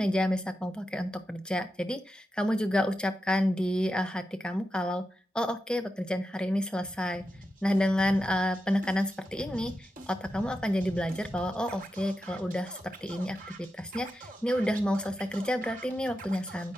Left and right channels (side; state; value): both; normal; correlation 0.89